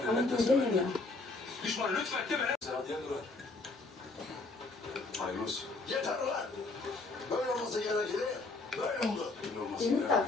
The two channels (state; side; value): quieter; right; 3.4 dB